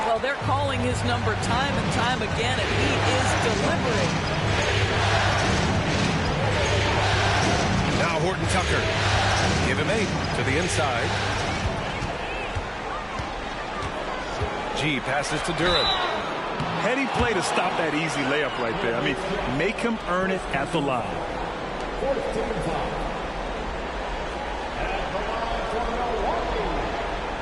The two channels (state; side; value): identical; both; correlation 1.00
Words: Well, they're calling his number time and time again, and he is delivering. Now Horton Tucker. Give him 8 to the inside. G passes to Duran. Heady play to stop that easy layup right there. I mean, make him earn it at the line.